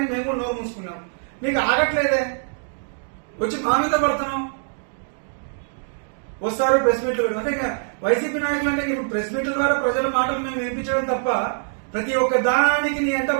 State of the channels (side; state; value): left; silent; digital silence